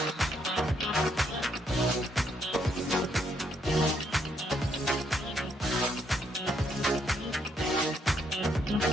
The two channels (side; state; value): both; normal; correlation 0.73